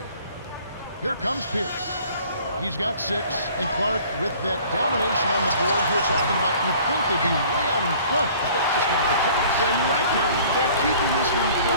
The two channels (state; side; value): inverted; both; correlation -0.51